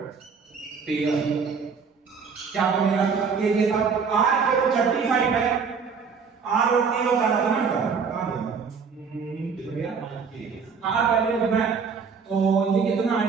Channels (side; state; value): left; quieter; 5.7 dB